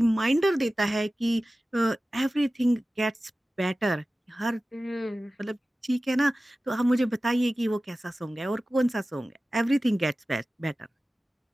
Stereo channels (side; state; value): both; normal; correlation 0.96